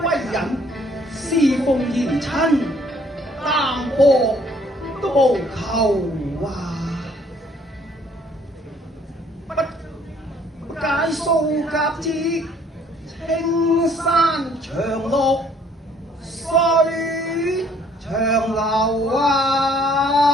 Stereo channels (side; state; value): both; normal; correlation 0.61